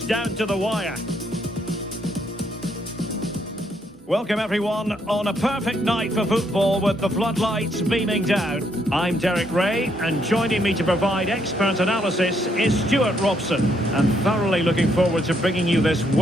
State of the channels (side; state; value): both; normal; correlation 0.73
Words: down to the wire. Welcome everyone on a perfect night for football with the floodlights beaming down. I'm Derek Ray, and joining me to provide expert analysis is Stuart Robson. And thoroughly looking forward to bringing you this